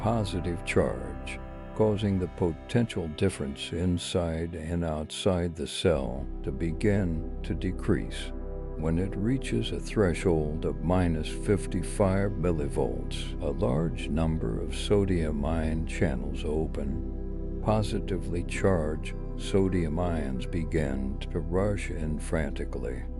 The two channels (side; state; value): both; identical; correlation 1.00